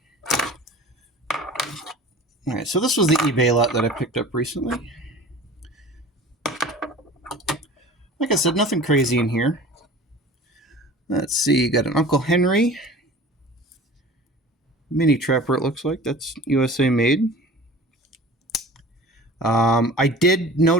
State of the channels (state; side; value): normal; both; correlation 0.41